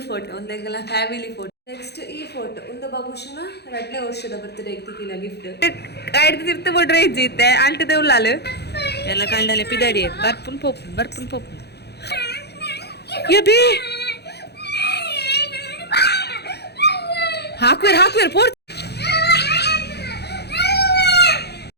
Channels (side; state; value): right; late; 0.48 ms